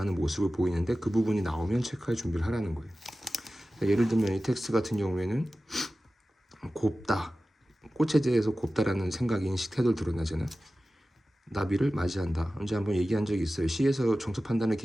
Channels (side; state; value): both; normal; correlation 0.95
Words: 모습을 보이는데 그 부분이 나오면 체크할 준비를 하라는 거예요. 예를 들면 이 텍스트 같은 경우에는 곱다, 꽃에 대해서 곱다라는 생각, 인식, 태도를 드러나잖아요. 나비를 맞이한다. 언제 한번 얘기한 적이 있어요. 시에서 정서 판단의